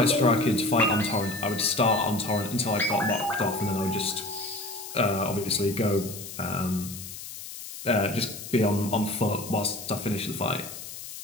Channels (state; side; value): noise; left; hiss, 11 dB below the sound